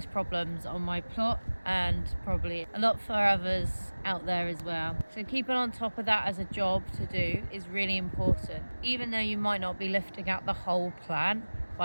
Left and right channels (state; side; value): inverted; both; correlation -1.00